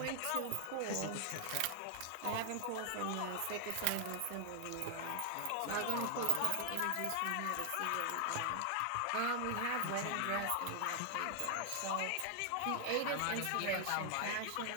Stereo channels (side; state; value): both; different; correlation 0.00